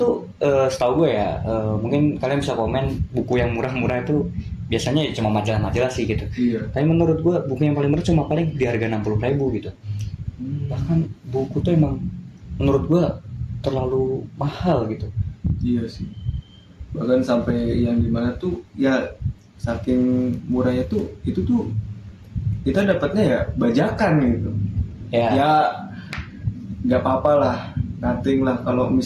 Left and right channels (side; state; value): both; identical; correlation 1.00